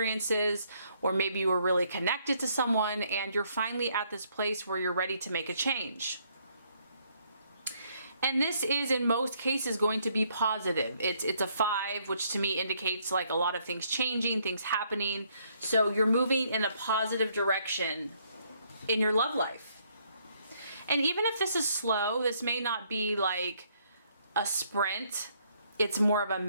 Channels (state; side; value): inverted; both; correlation -0.69